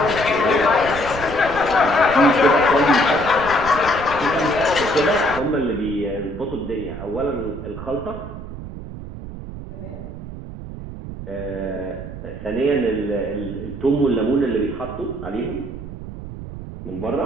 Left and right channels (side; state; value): right; noise; rumble, 10 dB below the sound